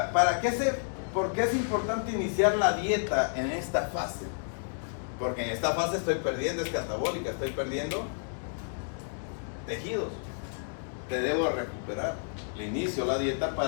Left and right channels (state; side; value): silent; right; digital silence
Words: ¿por qué es importante iniciar la dieta en esta fase? Porque en esta fase estoy perdiendo, es catabólica, estoy perdiendo tejidos. Te debo recuperar. Le inicio la dieta